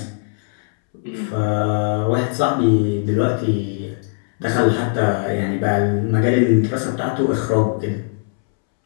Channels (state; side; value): silent; right; 66 dB below the other